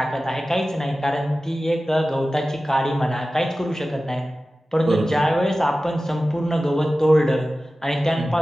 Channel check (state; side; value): normal; both; correlation 0.95